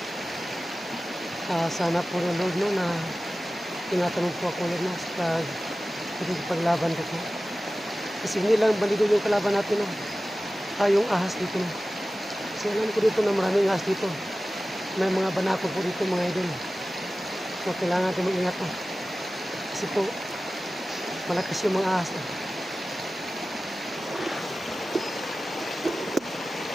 Sana po ng Lord, no, na tinatanong po ako ulit, no, sa paglaban ko. Kasi hindi lang balido yung kalaban natin, no? Yung ahas dito, no? Kasi alam ko dito na maraming ahas dito. May mga banako po dito, mga idol. So kailangan natin mag-ingat, no? Kasi po malakas yung mga ahas, no?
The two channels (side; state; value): both; normal; correlation 0.96